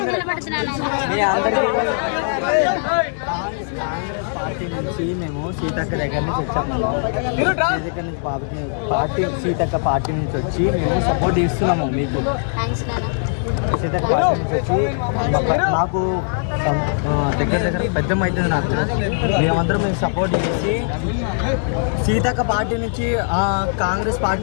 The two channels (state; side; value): silent; right; 66 dB below the other